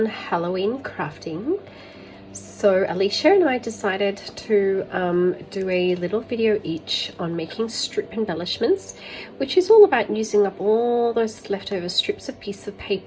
Halloween crafting. So Alicia and I decided to do a little video each on making strip embellishments, which is all about using up all those leftover strips of piece of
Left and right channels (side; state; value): both; identical; correlation 1.00